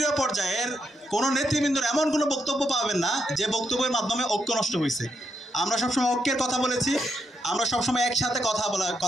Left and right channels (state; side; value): normal; both; correlation 0.80